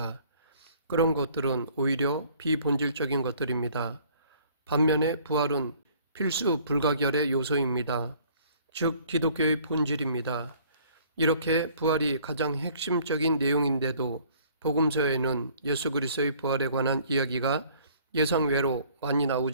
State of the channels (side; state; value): both; inverted; correlation -0.56